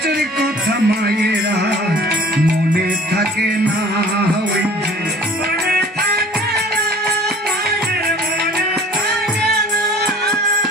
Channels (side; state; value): both; normal; correlation 0.48